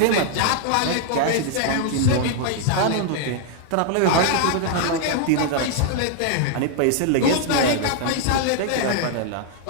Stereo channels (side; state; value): both; different; correlation 0.00